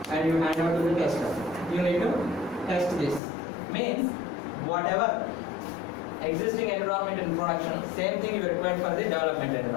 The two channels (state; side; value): drops out; right; at 3.2 s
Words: and you hand out to the tester. you need to test this. Means whatever existing environment in production, same thing you require for the development